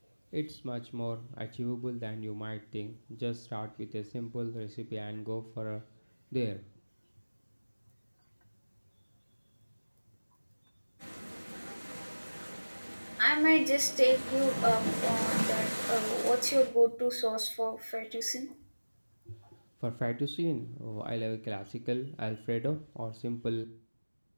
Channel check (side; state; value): both; inverted; correlation -1.00